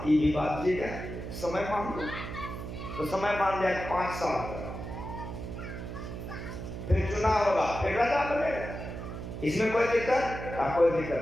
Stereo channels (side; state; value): right; noise; hum, 8 dB below the sound